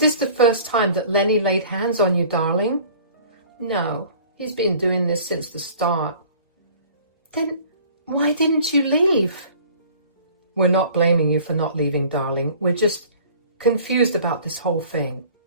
the first time that Lenny laid hands on you, darling? No, he's been doing this since the start. Then why didn't you leave? We're not blaming you for not leaving, darling. We're just confused about this whole thing.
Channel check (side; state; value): both; inverted; correlation -0.49